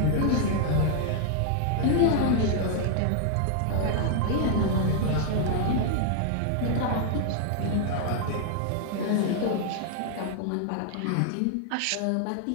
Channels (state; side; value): different; both; correlation 0.00